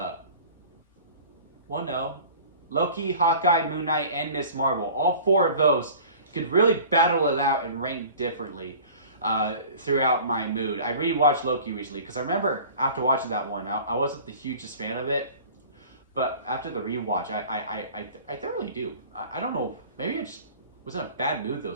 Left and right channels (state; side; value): inverted; both; correlation -0.44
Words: no. Loki, Hawkeye, Moon Knight, and Miss Marvel. All 4 of those could really battle it out and rank differently throughout my mood. I rewatched Loki recently because I remember after watching that one, I wasn't the hugest fan of it. But after the rewatch, I thoroughly do. I don't know. Maybe I just was in a bad mood